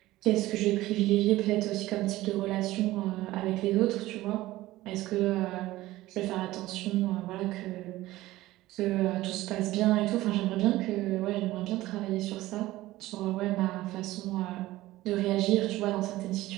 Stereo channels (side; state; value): left; quieter; 17.0 dB